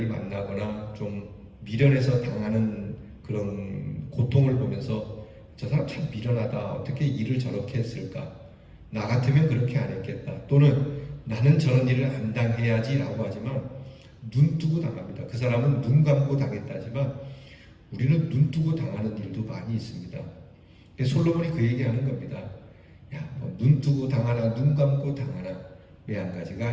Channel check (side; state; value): both; identical; correlation 1.00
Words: 만나거나 좀 미련해서 당하는 그런 고통을 보면서 저 사람 참 미련하다. 어떻게 일을 저렇게 했을까? 나 같으면 그렇게 안 했겠다. 또는 나는 저런 일을 안 당해야지 라고 하지만 눈 뜨고 당합니다. 그 사람은 눈 감고 당했다지만 우리는 눈 뜨고 당하는 일도 많이 있습니다. 솔로몬이 그 얘기하는 겁니다. 야, 눈 뜨고 당하나 눈 감고 당하나 왜 한 가지가